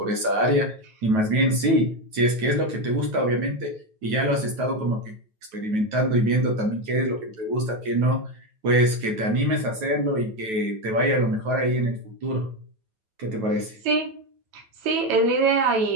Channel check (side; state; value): left; late; 9.2 ms